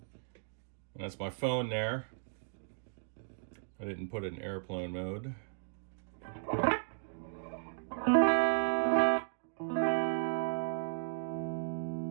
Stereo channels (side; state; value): left; silent; digital silence